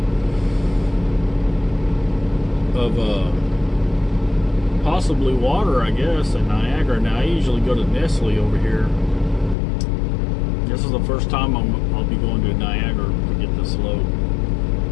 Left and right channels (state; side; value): drops out; right; at 9.6 s